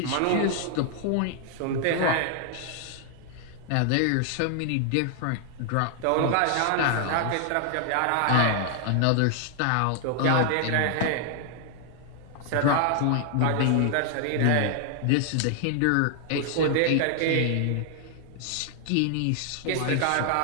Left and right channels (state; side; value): different; both; correlation 0.00